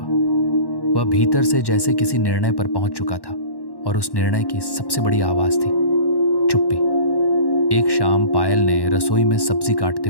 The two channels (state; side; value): late; right; 1.1 ms